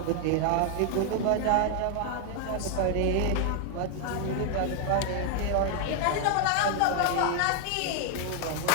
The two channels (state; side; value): different; both; correlation 0.00